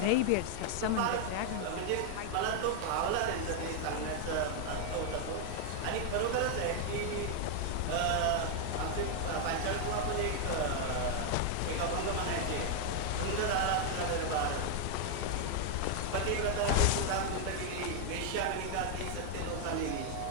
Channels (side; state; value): both; different; correlation 0.00